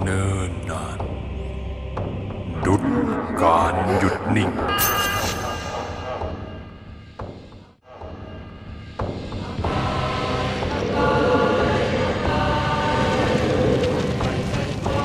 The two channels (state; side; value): identical; both; correlation 1.00